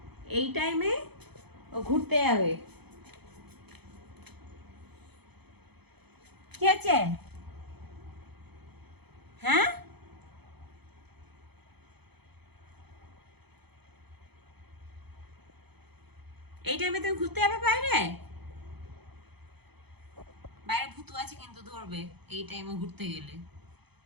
এই টাইমে ও ঘুরতে যাবে। কি আছে? হ্যাঁ, এই টাইমে তুমি ঘুরতে যাবে বাইরে? বাইরে ভূত আছে কিন্তু ধরবে এই টাইমে ঘুরতে গেলে।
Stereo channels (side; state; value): left; late; 0.98 ms